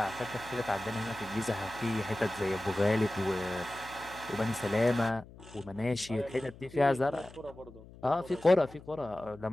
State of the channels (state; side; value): noise; left; hum, 19 dB below the sound